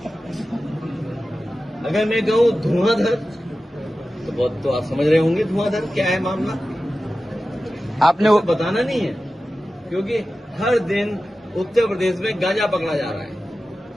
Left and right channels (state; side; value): normal; both; correlation 0.94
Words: अगर मैं कहूं धुआंधर तो बहुत, तो आप समझ रहे होंगे धुआंधर क्या है मामला। आपने वो बताना नहीं है, क्योंकि हर दिन उत्तर प्रदेश में गांजा पकड़ा जा रहा है।